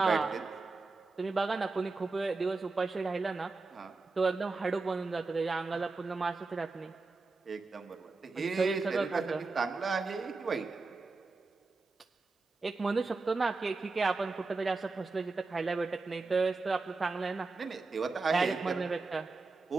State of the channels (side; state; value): left; quieter; 3.8 dB